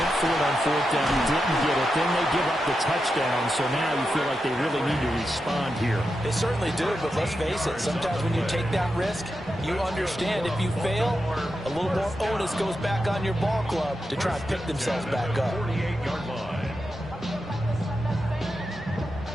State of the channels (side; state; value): both; normal; correlation 0.88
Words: for it on fourth down, didn't get it. Then they give up the touchdown, so now you feel like they really need to respond here. They certainly do, but let's face it, sometimes when you take that risk, you understand if you fail, a little more onus goes back on your ball club to try and pick themselves back up. 48-yard line.